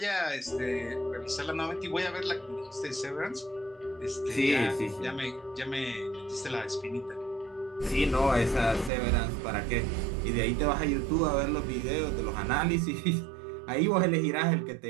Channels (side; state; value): left; drops out; at 8.9 s